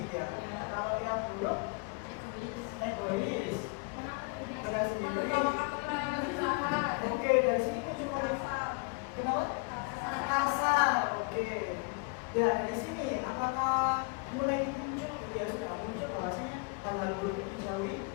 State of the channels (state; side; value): quieter; right; 30.7 dB